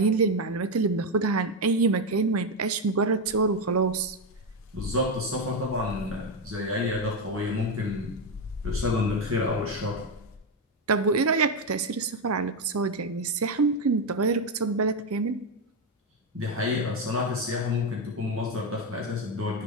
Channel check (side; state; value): both; normal; correlation 0.08